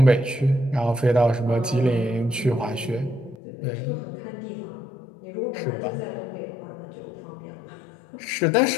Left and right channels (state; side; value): drops out; right; at 3.4 s